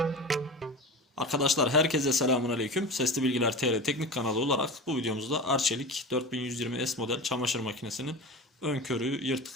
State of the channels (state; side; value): normal; both; correlation 0.30